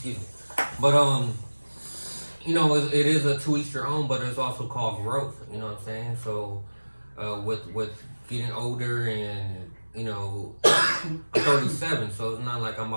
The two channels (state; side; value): inverted; both; correlation -1.00